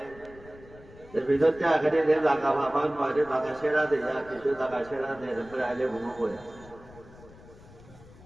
ভিতরতে আগে যে জায়গা ভাবান মাঝে জায়গা সেরা দেয়া কিছু জায়গা সেরা দেয় এরপরে আইলে ঘুমো করে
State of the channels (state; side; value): noise; left; rumble, 21 dB below the sound